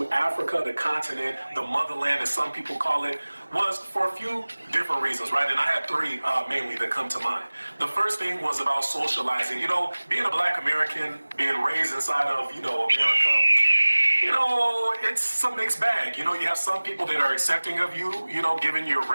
Africa, the continent, the motherland, as some people call it, was for a few different reasons, right? And I had three mainly that come to mind. The first thing was about socializing. You know, being a Black American, being raised inside of, America, it's a mixed bag. You have some people that are accepting of you, given your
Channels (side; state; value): both; inverted; correlation -1.00